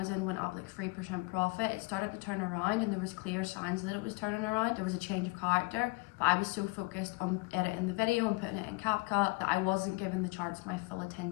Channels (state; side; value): quieter; right; 25.3 dB